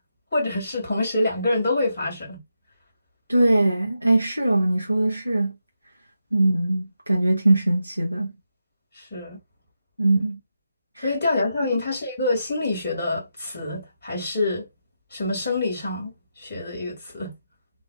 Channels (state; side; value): inverted; both; correlation -0.86